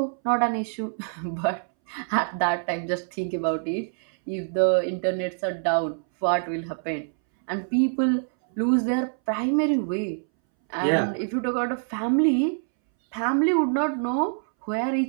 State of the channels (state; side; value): silent; left; 61 dB below the other